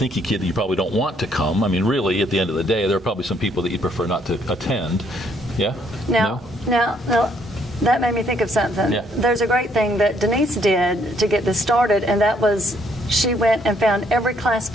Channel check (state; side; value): normal; both; correlation 0.68